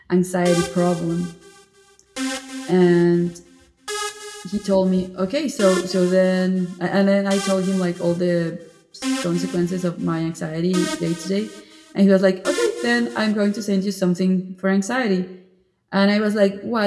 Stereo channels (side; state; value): both; identical; correlation 1.00